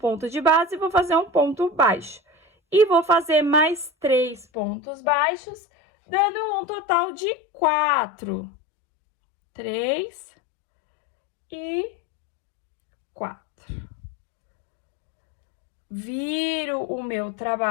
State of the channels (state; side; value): drops out; right; at 4.5 s